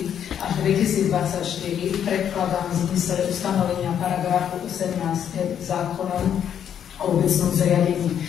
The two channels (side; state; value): right; quieter; 9.1 dB